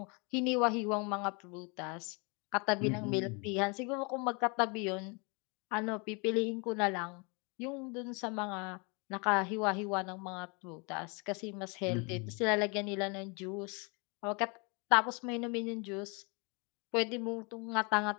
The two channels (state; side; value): quieter; right; 32.0 dB